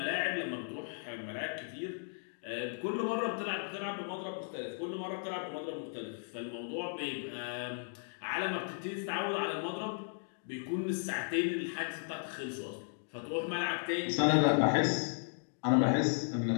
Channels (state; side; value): silent; right; digital silence